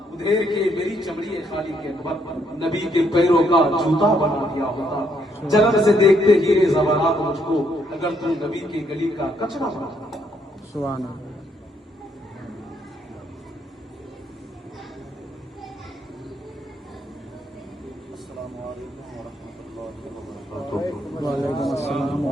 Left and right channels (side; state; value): both; normal; correlation 0.72